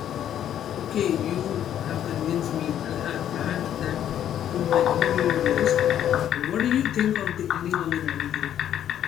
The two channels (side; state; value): right; quieter; 10.5 dB